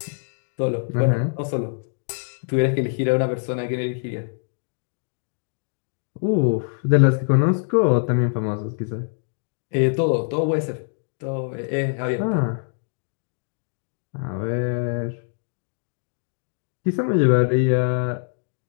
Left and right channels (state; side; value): silent; right; digital silence